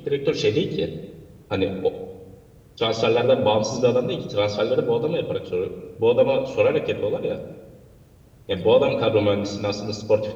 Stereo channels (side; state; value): both; identical; correlation 1.00